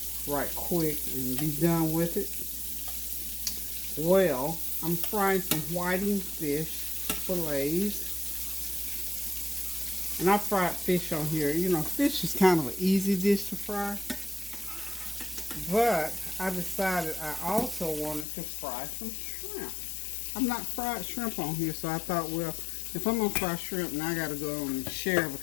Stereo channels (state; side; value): drops out; right; at 18.2 s